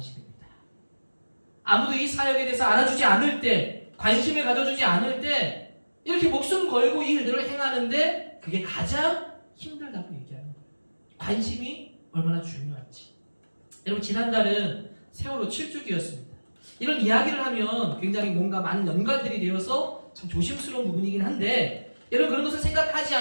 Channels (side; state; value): both; inverted; correlation -1.00